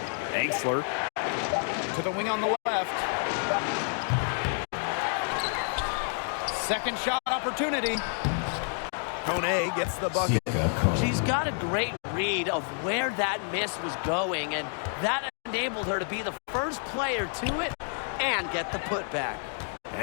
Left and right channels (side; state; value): right; silent; 59 dB below the other